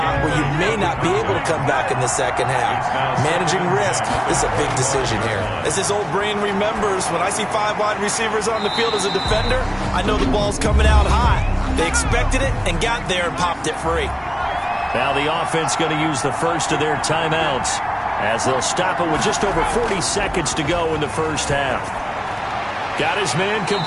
where you may not be able to come back in the second half. Managing risk is a big decision here. As this old brain remembers, when I see 5 wide receivers on the field as a defender, I know the ball's coming out high. They expected it and got there and popped it free. Now the offense going to use the first of their timeouts as they'll stop it with just over 40 seconds to go in the first half. Got his man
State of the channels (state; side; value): identical; both; correlation 1.00